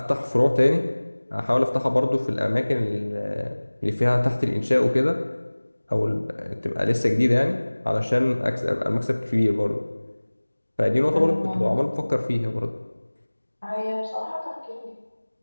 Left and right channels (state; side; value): inverted; both; correlation -1.00